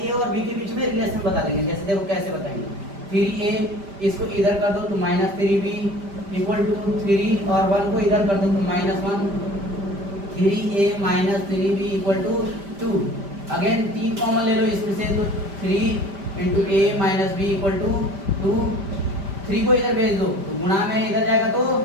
और बी के बीच में रिलेशन बता देंगे। जैसे देखो कैसे बताएंगे, 3a इसको इधर कर दो तो -3b इक्वल टू 3 और 1 को इधर कर दो तो -1, 3a - 3b equal to 2। Again 3 common ले लो इसमें से तो 3 × a - b इक्वल टू 2। 3 को इधर भेज दो तो गुणा में इधर जाएगा तो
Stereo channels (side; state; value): left; late; 5.1 ms